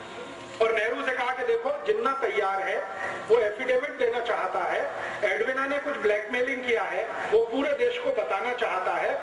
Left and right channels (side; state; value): both; identical; correlation 1.00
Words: देखो जिन्ना तैयार है, वो एफिडेविट देना चाहता है, एडविना ने कुछ ब्लैकमेलिंग किया है, वो पूरे देश को बताना चाहता